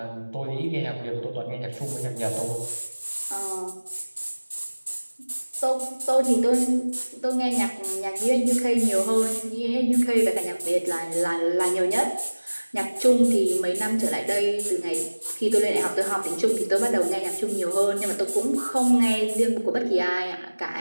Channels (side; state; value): both; inverted; correlation -1.00